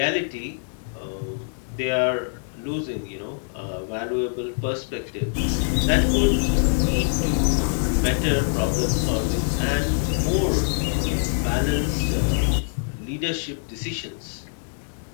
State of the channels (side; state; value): right; silent; 62 dB below the other